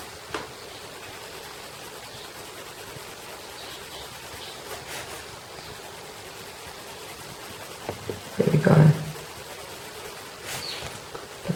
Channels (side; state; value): both; identical; correlation 1.00